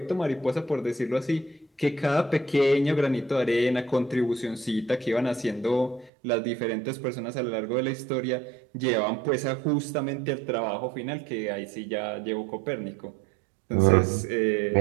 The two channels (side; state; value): left; drops out; at 6.1 s